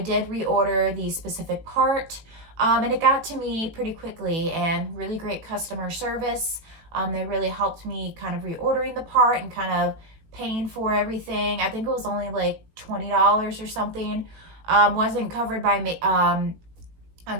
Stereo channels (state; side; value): late; left; 18 ms